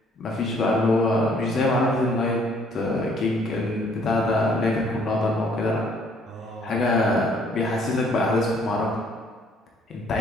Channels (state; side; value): normal; both; correlation 0.62